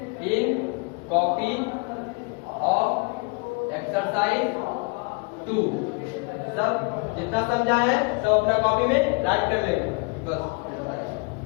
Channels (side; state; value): right; quieter; 30.7 dB